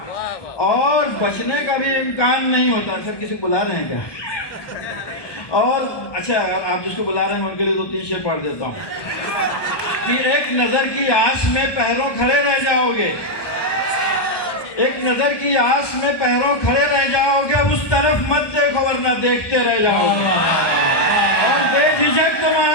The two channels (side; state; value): right; late; 1.2 ms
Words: اور بچنے کا بھی امکان نہیں ہوتا. سر کسی کو بلا رہے ہیں کیا؟ اور اچھا, آپ جس کو بلا رہے ہیں ان کے لیے تو 3 شعر پڑھ دیتا ہوں کہ ایک نظر کی آس میں پہروں کھڑے رہ جاؤ گے, ایک نظر کی آس میں پہروں کھڑے رہ جاؤ گے, اس طرف مت دیکھو ورنہ دیکھتے رہ جاؤ گے. اور بے جھجک تم